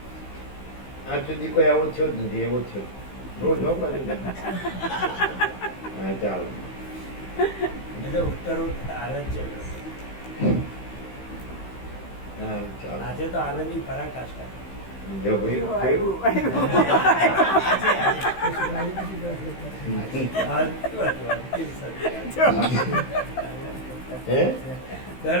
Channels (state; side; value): late; right; 16 ms